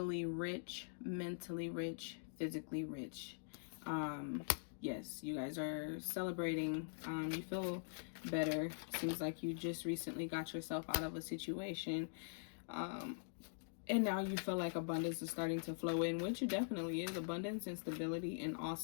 rich, mentally rich, physically rich. Yes, you guys are celebrating. You feel better. Seems like you just recently got yourself out of a situation. And now you feel like abundance is starting to flow in, which it definitely is. Abundance and stability, and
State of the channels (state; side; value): silent; right; digital silence